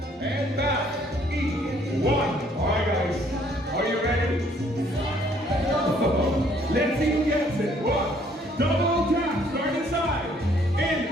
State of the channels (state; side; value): normal; both; correlation 0.63